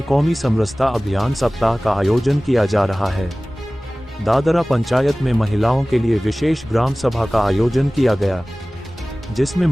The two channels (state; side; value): normal; both; correlation 0.98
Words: कौमी समरसता अभियान सप्ताह का आयोजन किया जा रहा है। दादरा पंचायत में महिलाओं के लिए विशेष ग्राम सभा का आयोजन किया गया, जिसमें